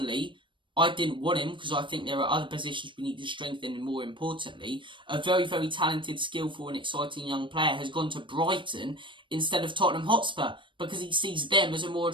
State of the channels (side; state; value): left; late; 0.24 ms